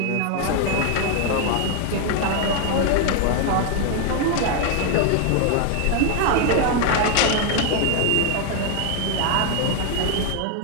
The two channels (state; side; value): different; both; correlation 0.01